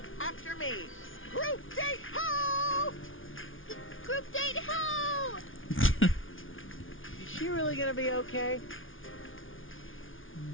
after me. Group date ho! Group date ho! Is she really gonna be okay?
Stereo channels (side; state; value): right; late; 0.58 ms